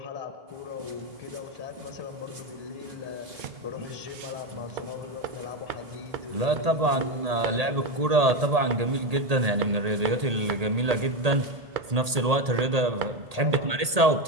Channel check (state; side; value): late; left; 1.8 ms